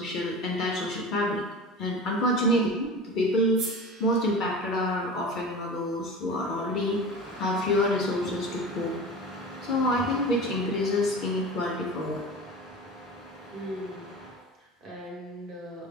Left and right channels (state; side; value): normal; both; correlation 0.33